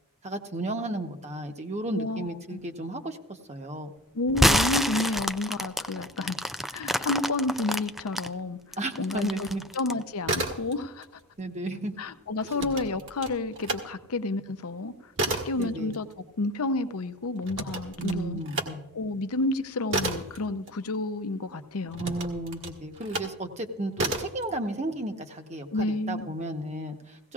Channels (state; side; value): normal; both; correlation 0.36